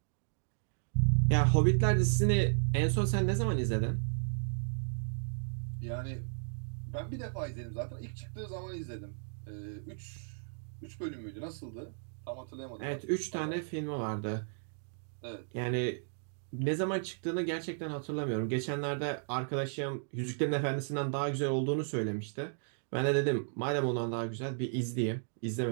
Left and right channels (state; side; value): silent; left; digital silence